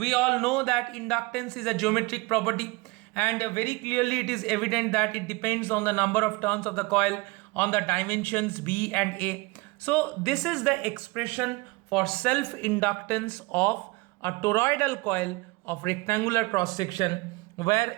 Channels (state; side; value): quieter; left; 24.2 dB